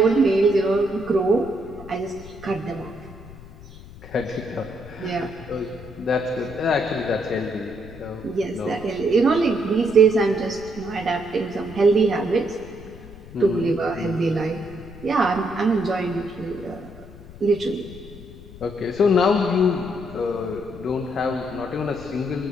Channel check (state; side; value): noise; left; rumble, 17 dB below the sound